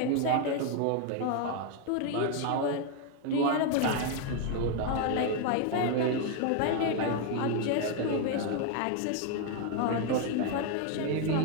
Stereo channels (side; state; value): both; different; correlation 0.01